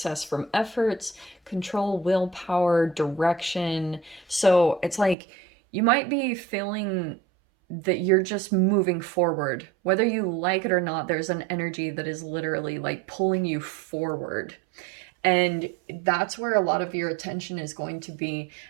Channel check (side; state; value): left; drops out; at 5.2 s